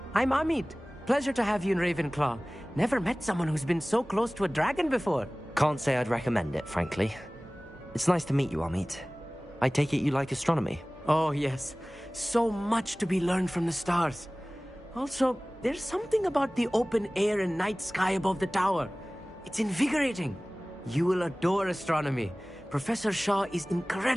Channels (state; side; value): normal; both; correlation 0.98